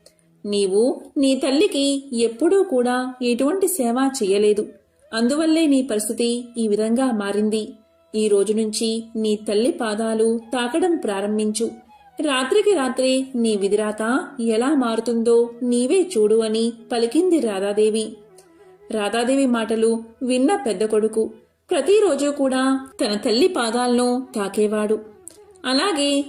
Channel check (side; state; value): both; identical; correlation 1.00